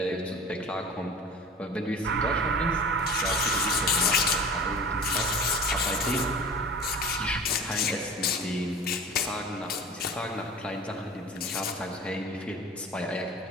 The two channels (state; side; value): normal; both; correlation 0.39